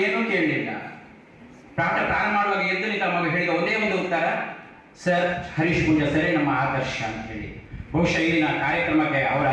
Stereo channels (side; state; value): both; identical; correlation 1.00